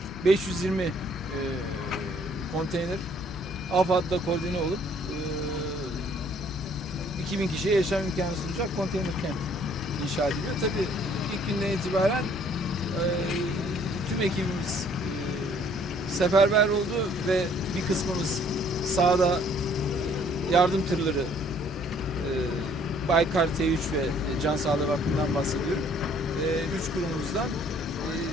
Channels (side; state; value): both; normal; correlation 0.60